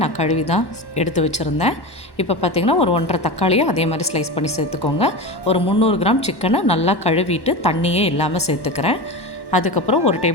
நான் கழுவி தான் எடுத்து வச்சுருந்தேன். இப்போ பார்த்திங்கன்னா ஒரு 1.5 தக்காளியை அதே மாதிரி ஸ்லைஸ் பண்ணி சேர்த்துக்கோங்க. ஒரு 300 கிராம் சிக்கனை நல்லா கழுவிட்டு தண்ணியே இல்லாமல் சேர்த்துக்கிறேன். அதுக்கப்புறம் ஒரு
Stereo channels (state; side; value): late; right; 1.1 ms